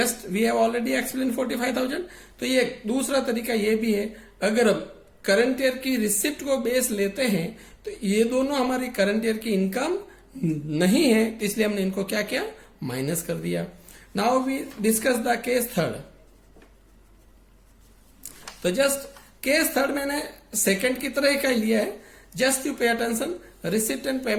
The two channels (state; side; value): identical; both; correlation 1.00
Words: we have already explain 45,000. तो ये दूसरा तरीका ये भी है, अगर हम करंट ईयर की रिसिप्ट को बेस लेते हैं तो ये दोनों हमारी करंट ईयर की इनकम नहीं है, तो इसलिए हमने इनको क्या किया, माइनस कर दिया. Now we discuss the case third. तो जस्ट केस थर्ड मैंने सेकंड की तरह का लिया है. Just you pay attention. Receipt and